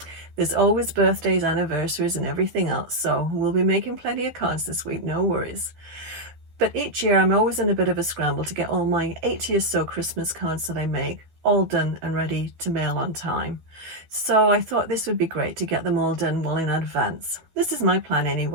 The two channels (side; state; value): left; late; 12 ms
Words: There's always birthdays, anniversaries, and everything else, so we'll be making plenty of cards this week, no worries. But each year I'm always in a bit of a scramble to get all my 80 or so Christmas cards that I make all done and ready to mail on time. So I thought this would be great to get them all done well in advance. This is my plan